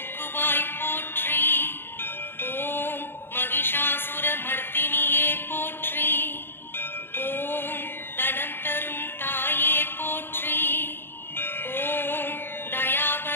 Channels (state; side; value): late; right; 0.10 ms